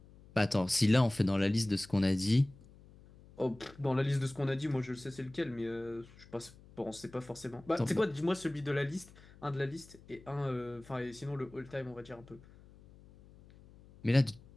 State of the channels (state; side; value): noise; left; hum, 23 dB below the sound